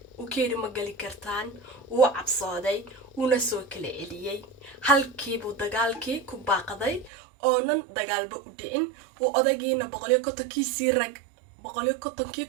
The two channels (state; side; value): drops out; left; at 7.1 s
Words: uu ka yidhi ma gali kartaan, wuu cabsooday, wuuna soo kala celiyey. halkiibuu dagaalkii ku baaqday oonan dagaalba u dhicin. uu odagiina 150,000